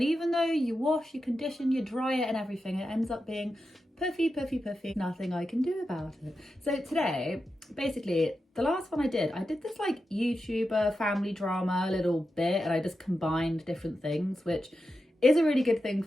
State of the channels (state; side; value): normal; both; correlation 0.89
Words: even though you wash, you condition, you dry it and everything, it ends up being puffy. Nothing I can do about it. So today, basically, the last one I did this like YouTuber family drama a little bit, and I just combined different things, which is a really good thing